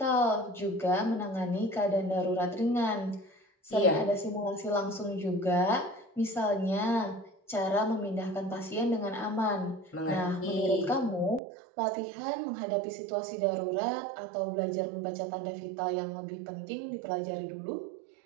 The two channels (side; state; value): left; drops out; at 11.4 s